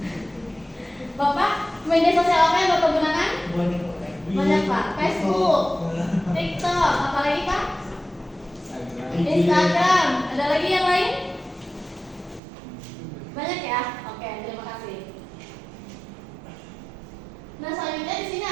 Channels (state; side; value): drops out; left; at 12.4 s